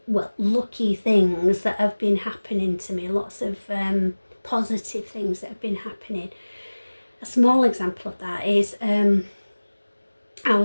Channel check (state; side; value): inverted; both; correlation -1.00